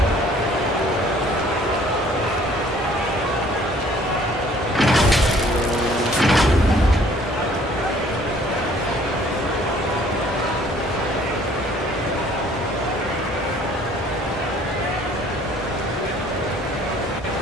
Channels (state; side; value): normal; both; correlation 0.57